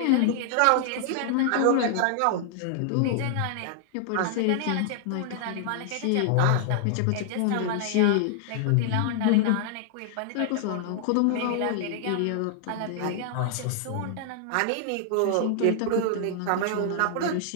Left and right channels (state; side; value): different; both; correlation 0.00